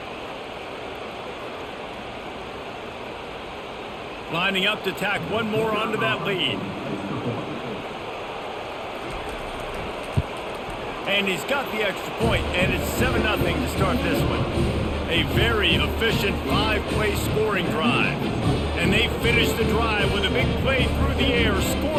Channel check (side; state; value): both; identical; correlation 1.00